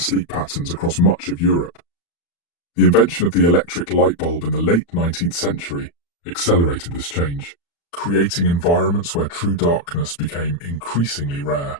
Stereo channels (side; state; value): right; late; 35 ms